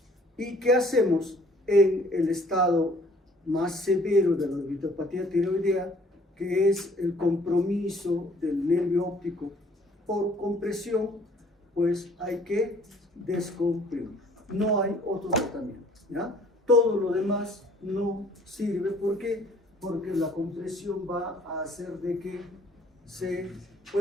¿y qué hacemos en el estado más severo de la orbitopatía tiroidea, que es el compromiso del nervio óptico por compresión? Pues hay que descomprimir. No hay otro tratamiento. ¿Ya? Todo lo demás no sirve. ¿Por qué? Porque la compresión va a hacer de que se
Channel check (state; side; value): normal; both; correlation 0.58